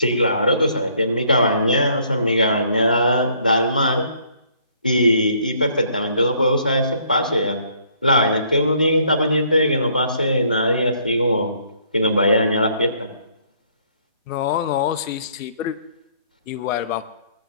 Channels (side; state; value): both; inverted; correlation -0.64